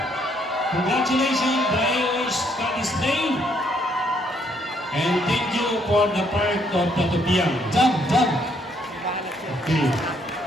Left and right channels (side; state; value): both; normal; correlation 0.70